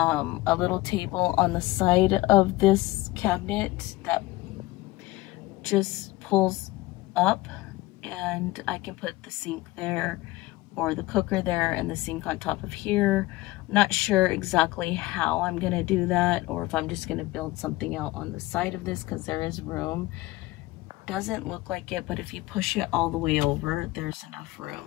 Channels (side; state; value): right; quieter; 18.7 dB